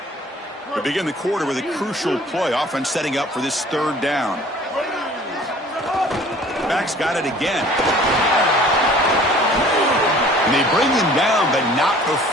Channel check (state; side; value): normal; both; correlation 0.50